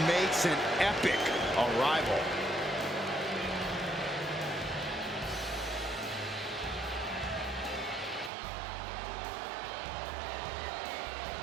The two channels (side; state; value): left; drops out; at 8.3 s